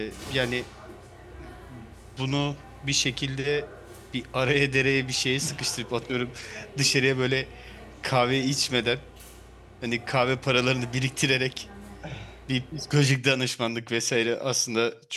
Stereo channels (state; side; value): identical; both; correlation 1.00